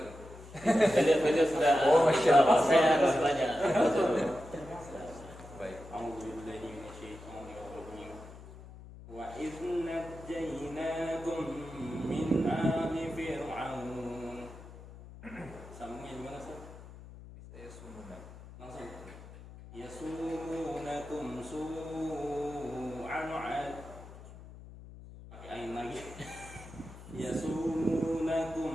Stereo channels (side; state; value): left; noise; hum, 16 dB below the sound